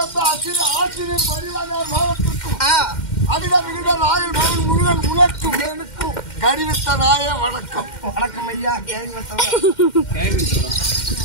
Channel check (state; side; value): late; right; 2.1 ms